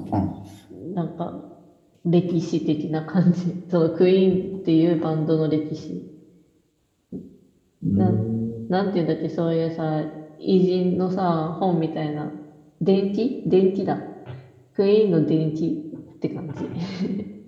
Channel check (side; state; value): both; identical; correlation 1.00